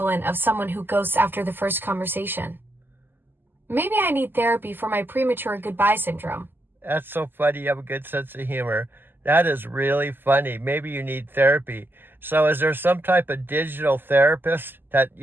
of someone who ghosts after the first conversation. Maybe I need therapy for my premature goodbye syndrome. That's so funny. You have a good sense of humor. That is really funny. Maybe you need therapy. So is there some type of digital therapist that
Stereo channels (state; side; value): late; left; 0.094 ms